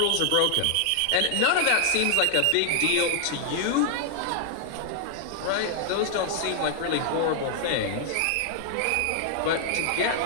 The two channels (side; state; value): both; different; correlation 0.00